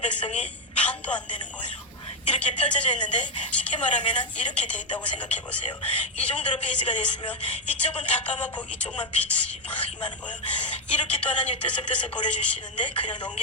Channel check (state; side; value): normal; both; correlation 0.04